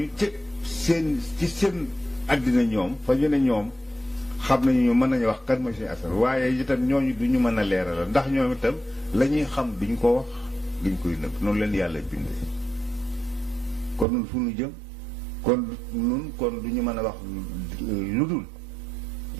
ci seen àddina ñoom fa ñu ne ñoom xam nañu mën nañu wax kan mooy Sëñ Assane waaye itam ñooñu du ñu mën a leeral ndax ñoom itam la ñuy xam duñ ko wax duñ koy nëbb noonu leen yàlla bindee kon nun fu nu jëm kon du ñu mën a wax lu dul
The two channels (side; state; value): left; drops out; at 14.1 s